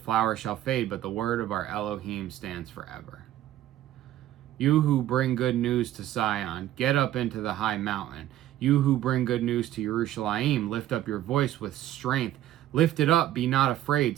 shall fade, but the word of our Elohim stands forever. You who bring good news to Zion, get up into the high mountain. You who bring good news to Jerusalem, lift up your voice with strength. Lift it up, be not afraid.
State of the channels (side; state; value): left; quieter; 13.3 dB